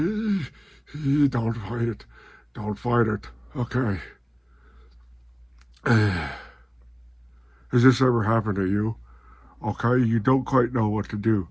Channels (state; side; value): identical; both; correlation 1.00